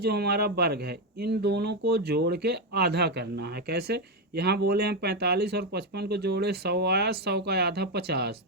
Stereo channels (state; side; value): normal; both; correlation 0.07